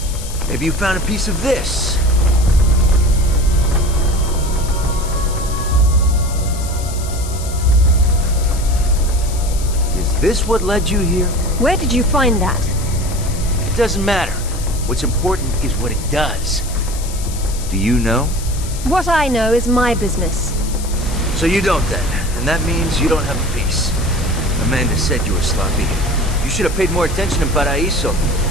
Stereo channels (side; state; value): left; noise; hiss, 12 dB below the sound